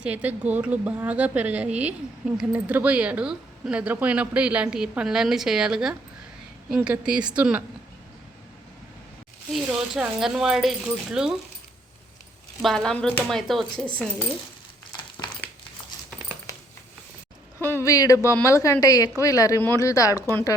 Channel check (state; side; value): normal; both; correlation 0.68